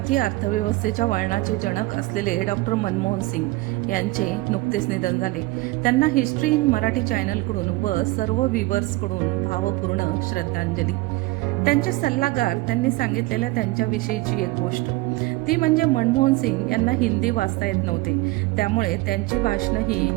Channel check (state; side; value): quieter; left; 20.7 dB